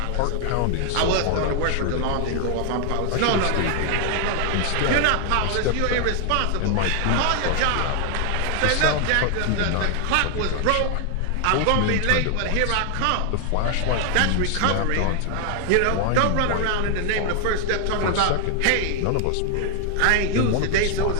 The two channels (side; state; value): both; different; correlation 0.00